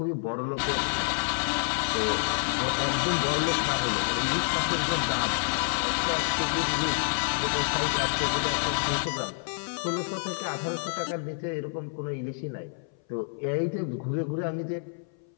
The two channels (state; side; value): silent; right; 57 dB below the other